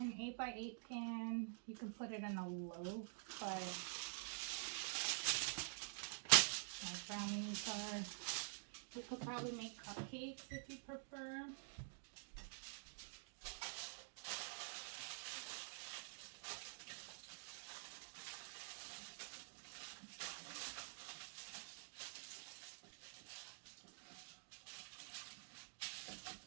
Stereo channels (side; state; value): left; silent; digital silence